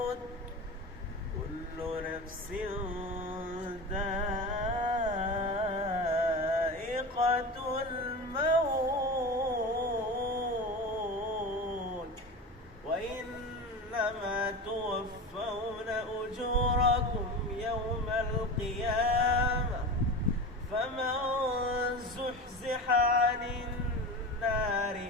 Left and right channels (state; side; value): normal; both; correlation 0.28